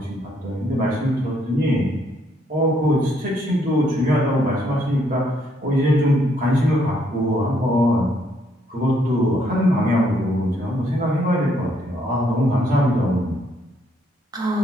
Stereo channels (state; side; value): normal; both; correlation 0.71